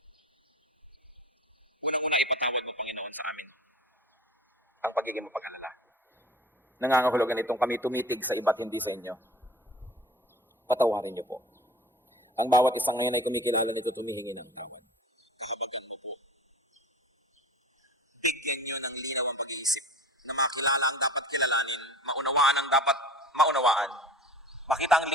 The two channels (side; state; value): both; normal; correlation 0.41